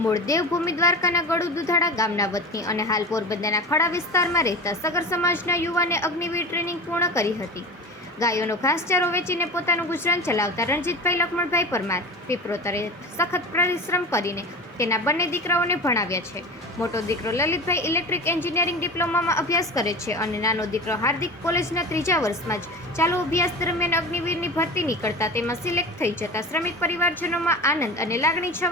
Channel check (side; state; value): both; normal; correlation 0.31